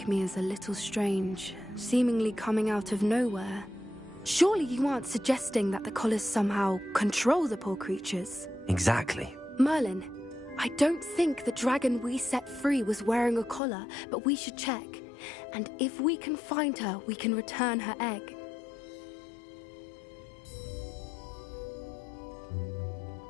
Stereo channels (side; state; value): right; drops out; at 13.6 s